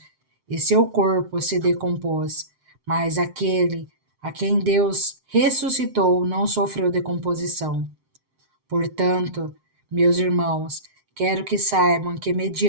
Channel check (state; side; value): late; left; 7.6 ms